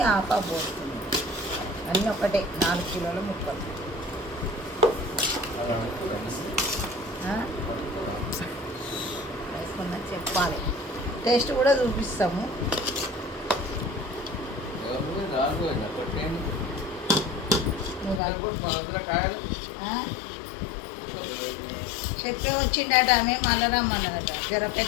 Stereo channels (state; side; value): drops out; right; at 18.2 s